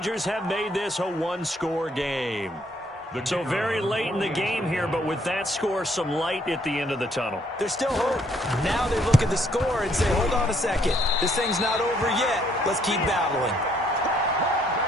have made this a 1-score game. So very late in the game here, but with that score, some light at the end of the tunnel. There's still hope. Now they look at the score and say, hold on a second. This thing's not over yet. Let's keep battling.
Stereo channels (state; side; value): normal; both; correlation 0.67